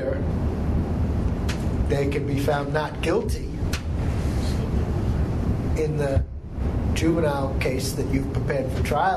they can be found not guilty in the juvenile case that you've prepared for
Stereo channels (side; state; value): both; identical; correlation 1.00